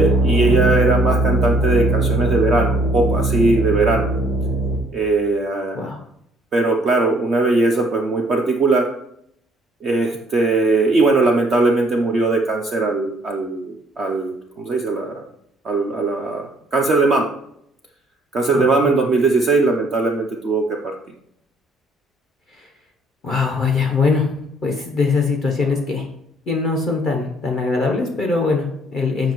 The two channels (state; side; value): normal; both; correlation 0.62